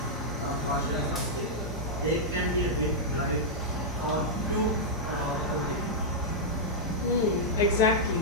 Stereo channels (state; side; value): normal; both; correlation -0.07